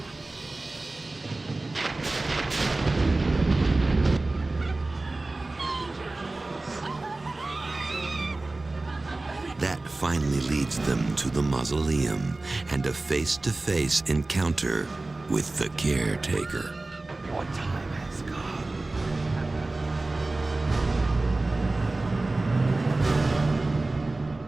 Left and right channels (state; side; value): quieter; left; 3.1 dB